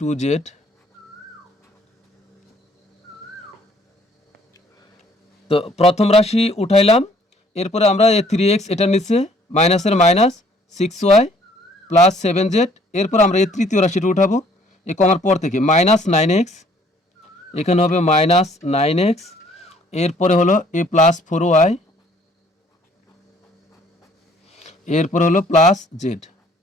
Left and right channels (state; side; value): normal; both; correlation 0.60